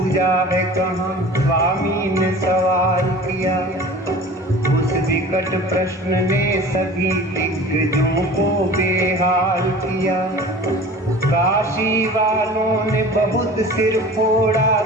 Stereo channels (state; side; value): normal; both; correlation 0.40